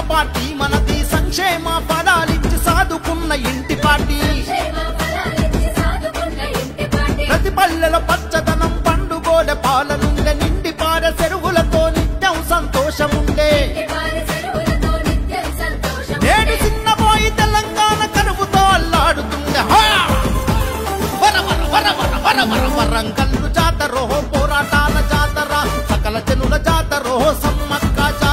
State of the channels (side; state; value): both; identical; correlation 1.00